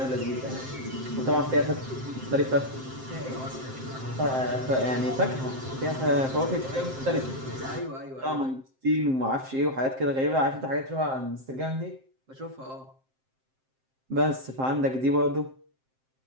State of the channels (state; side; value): late; left; 7.6 ms